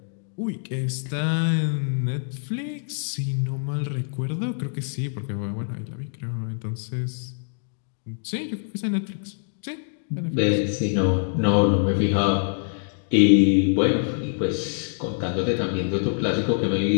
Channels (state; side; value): silent; right; digital silence